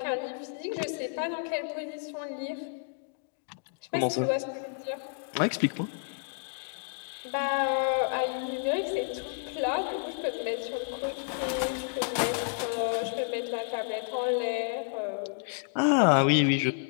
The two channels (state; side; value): silent; right; digital silence